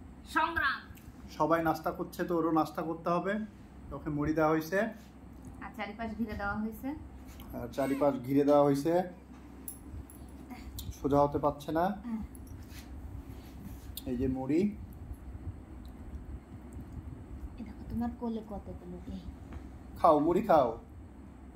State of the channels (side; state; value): both; identical; correlation 1.00